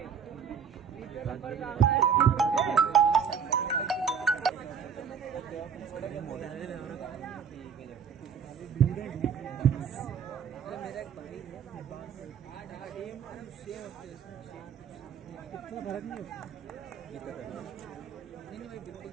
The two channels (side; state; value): left; quieter; 7.0 dB